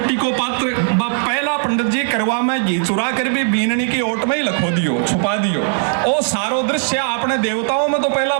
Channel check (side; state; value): left; silent; 60 dB below the other